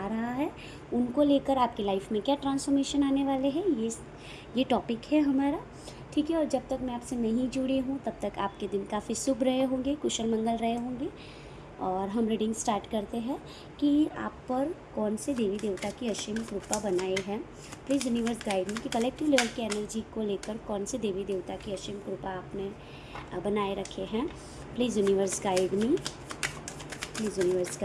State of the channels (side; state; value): both; identical; correlation 1.00